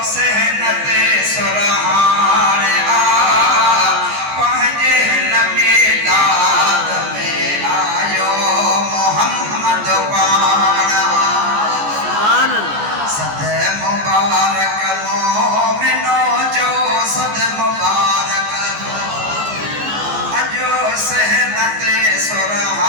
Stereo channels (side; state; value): left; late; 14 ms